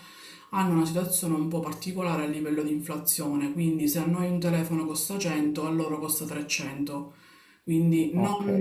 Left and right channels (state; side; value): identical; both; correlation 1.00